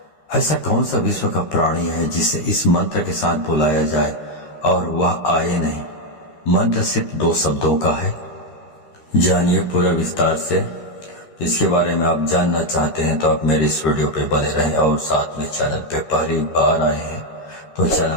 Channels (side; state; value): right; late; 13 ms